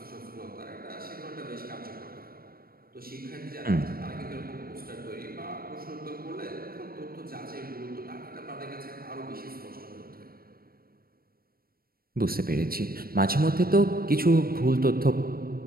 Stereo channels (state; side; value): late; left; 0.43 ms